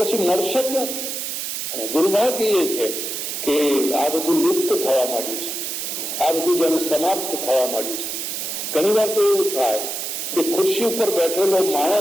મળશે ક્યાંથી? અને દુર્ભાગ્ય એ છે કે આ બધું લુપ્ત થવા માંડ્યું છે, આ બધું જેને સમાપ્ત થવા માંડ્યું છે. ઘણી વાર તો એવું થાય કે ખુરશી ઉપર બેઠેલો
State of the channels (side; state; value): right; noise; hiss, 4 dB below the sound